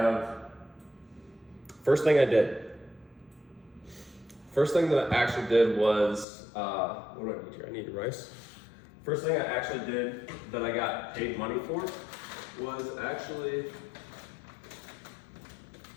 first thing I did. First thing that I actually did was, what do I need here? I need rice. First thing I actually did that I got paid money for was actually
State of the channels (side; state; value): right; drops out; at 6.2 s